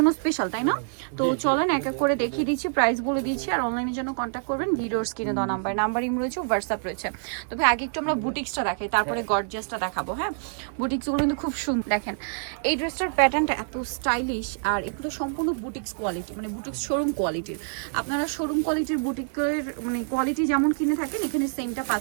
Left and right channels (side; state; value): left; silent; digital silence